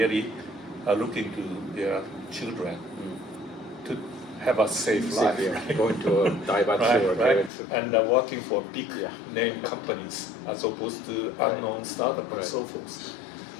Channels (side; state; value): right; drops out; at 7.5 s